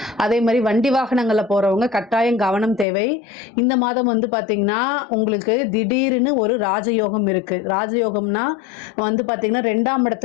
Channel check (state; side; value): drops out; right; at 2.9 s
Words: அதே மாதிரி வண்டி வாகனங்கள்ல போறவங்க கட்டாயம் கவனம் தேவை. இந்த மாதம் வந்து பாத்தீங்கன்னா உங்களுக்கு திடீர்னு ஒரு ராஜயோகம் இருக்கு. ராஜயோகம்னா வந்து பாத்தீங்கன்னா 2ஆம்